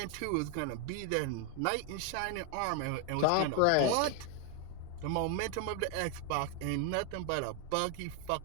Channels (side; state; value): both; different; correlation 0.00